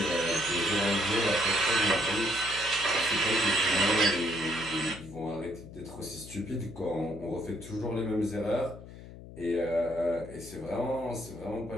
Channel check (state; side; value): noise; left; hum, 15 dB below the sound